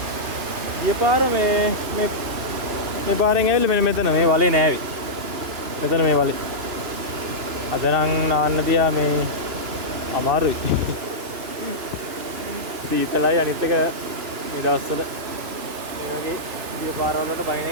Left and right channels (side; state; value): left; late; 2.9 ms